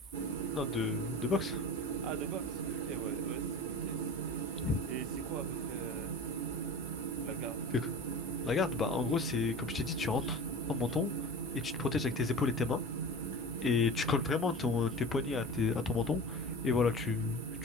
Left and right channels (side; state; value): both; normal; correlation 0.34